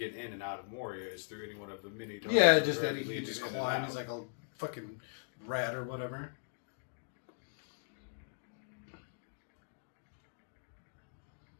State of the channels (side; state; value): right; silent; digital silence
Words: in and out of Moria is through any one of the mini doors. Yeah, just that Or he could lead just in and climb. out. He's like a fucking rat or whatever.